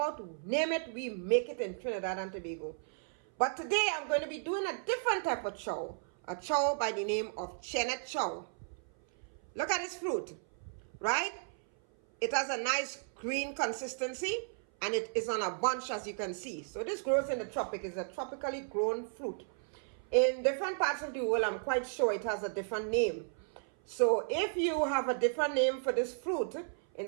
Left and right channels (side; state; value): left; silent; 55 dB below the other